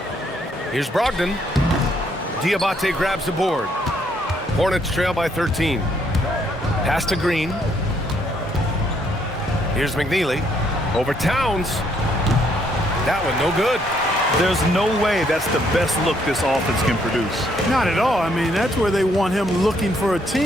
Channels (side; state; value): both; normal; correlation 0.70